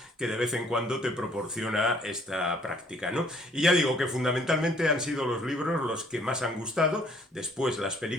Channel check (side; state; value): both; normal; correlation 0.61